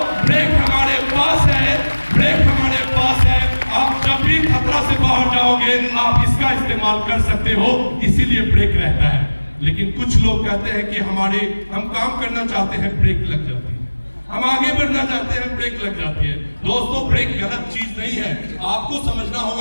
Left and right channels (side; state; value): both; inverted; correlation -1.00